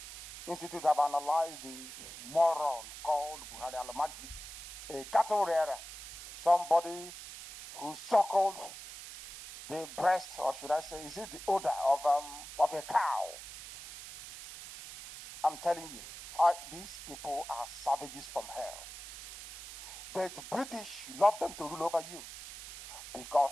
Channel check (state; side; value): noise; right; hiss, 12 dB below the sound